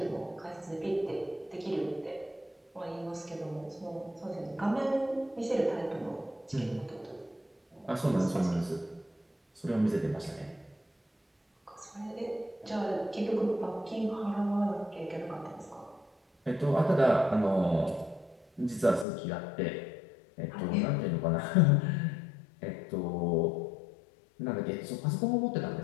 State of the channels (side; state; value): right; drops out; at 19.1 s